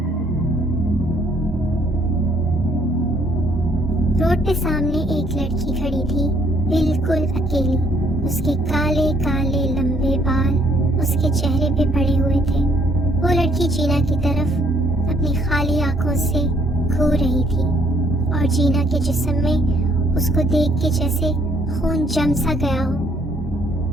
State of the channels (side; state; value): both; normal; correlation 0.66